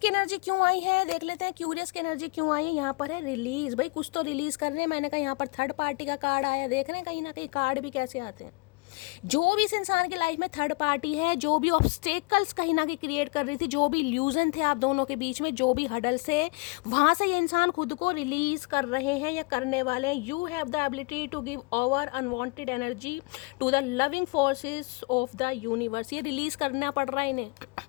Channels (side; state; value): right; quieter; 28.8 dB